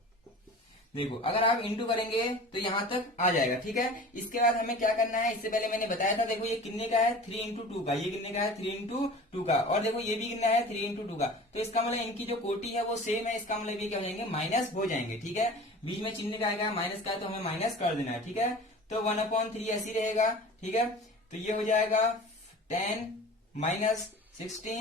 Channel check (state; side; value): normal; both; correlation 0.39